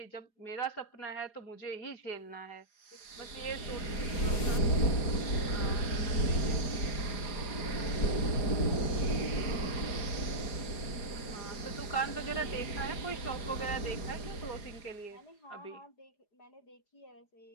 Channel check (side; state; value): right; late; 4.9 ms